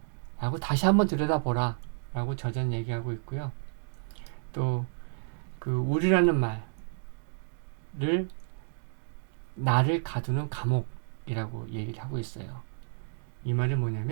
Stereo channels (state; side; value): silent; left; digital silence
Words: 라고 다시 한번 들여다보라 라고 저자는 얘기하고 있고요. 또 우리라는 말을 나를 가두는 감옥이라고 얘기를 하고 있어요. 이 말은